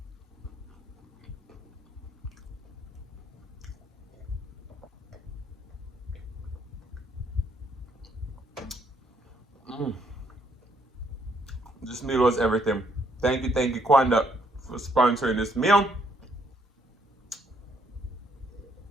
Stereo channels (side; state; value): both; normal; correlation 0.70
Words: meal was everything. Thank you, Kwanda, for sponsoring this meal.